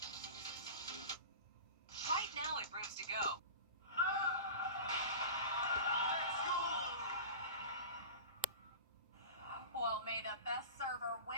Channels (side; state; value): both; inverted; correlation -0.32